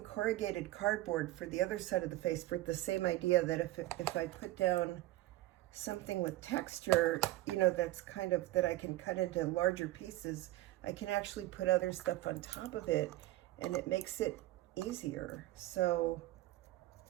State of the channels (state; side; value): quieter; left; 16.4 dB